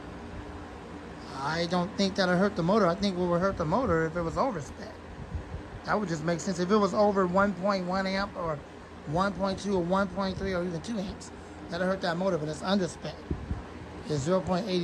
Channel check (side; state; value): both; identical; correlation 1.00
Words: I don't think that'll hurt the motor. I think what would hurt the motor if it was over spec. That would just make sense. If it was over 1.1 amp or 1.2 or 1.3 or even 2 amps, that'll hurt that motor, but it's under spec. It's